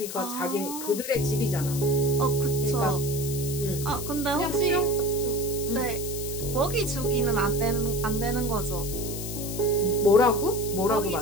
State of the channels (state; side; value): noise; left; hiss, 8 dB below the sound